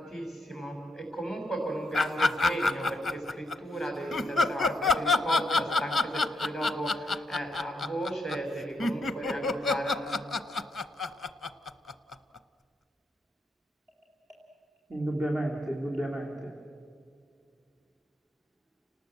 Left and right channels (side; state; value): both; normal; correlation 0.79